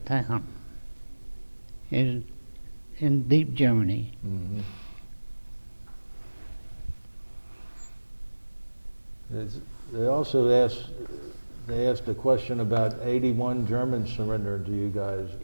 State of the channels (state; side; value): inverted; both; correlation -1.00